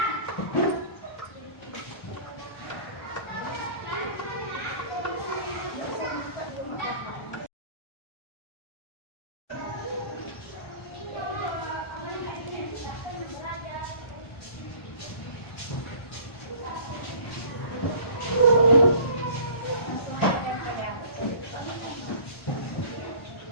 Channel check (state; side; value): late; right; 1.1 ms